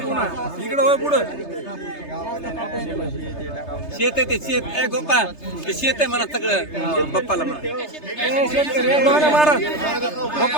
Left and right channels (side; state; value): right; late; 3.3 ms